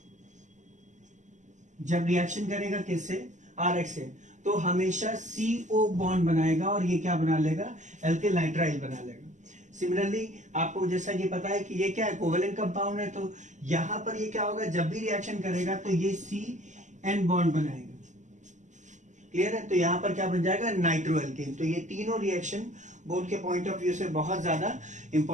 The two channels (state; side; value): late; left; 0.35 ms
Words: जब रिएक्शन करेगा किससे, RX से, तो हमेशा CO बॉन्ड बनाएगा और ये क्या बना लेगा, एल्किल नाइट्राइल बना लेगा। सिमिलरली आपको जैसा कि पता है कि ये क्या है, कोवेलेंट कंपाउंड है, तो यहां पर ये क्या होगा, जब भी रिएक्शन करेगा तो ये CN बॉन्ड बनाएगा। क्लियर है, तो यहां पर क्या बन जाएगा, नाइट्रो एल्केन। तो ये तीनों रिएक्शन बोर्ड के पॉइंट ऑफ व्यू से बहुत ज्यादा